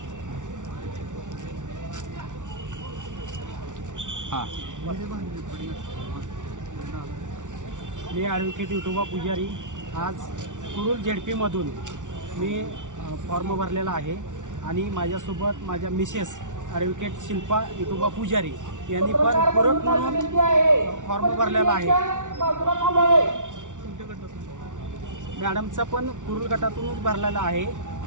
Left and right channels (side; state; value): left; late; 0.87 ms